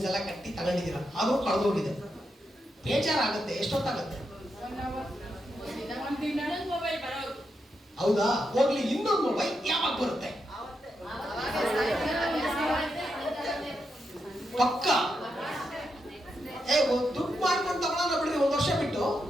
ಎಲ್ಲ ಕಟ್ಟಿ ತಗೊಂಡಿದ್ದೀರಾ, ಅದು ಕಳೆದೋಗಿದೆ, ಬೇಜಾರಾಗುತ್ತೆ. ಎಷ್ಟೊತ್ತಾಗುತ್ತೆ? ಹೌದಾ? ಹೋಗ್ಲಿ, ಇನ್ನೊಂದು ಮೊಬೈಲ್ ಯಾವಾಗ ಬರುತ್ತೆ? ಪಕ್ಕ ದುಡ್ಡು ಮಾಡ್ಕೊಂಡು ತಗೊಳ್ಳೋಣ ಬಿಡ್ರಿ, 1 ವರ್ಷ ಬಿಟ್ಟು,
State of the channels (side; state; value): both; normal; correlation 0.84